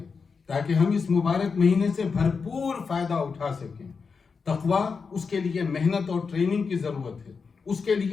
تاکہ ہم اس مبارک مہینے سے بھرپور فائدہ اٹھا سکیں۔ تقویٰ، اس کے لیے محنت اور ٹریننگ کی ضرورت ہے، اس کے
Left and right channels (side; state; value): right; quieter; 5.2 dB